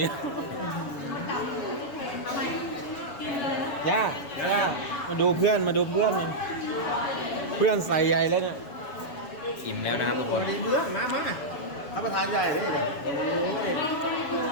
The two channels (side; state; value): right; late; 7.1 ms